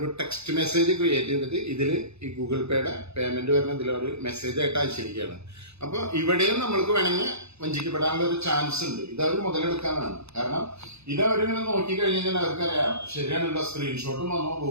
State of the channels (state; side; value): late; left; 0.80 ms